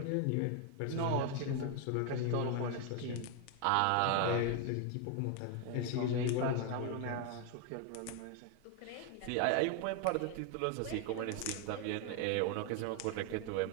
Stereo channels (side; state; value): both; different; correlation 0.01